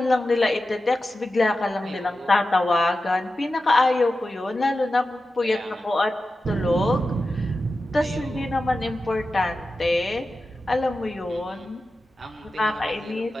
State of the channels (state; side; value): normal; both; correlation 0.93